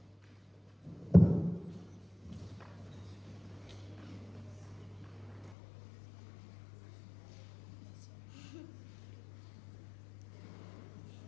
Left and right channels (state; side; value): drops out; right; at 5.6 s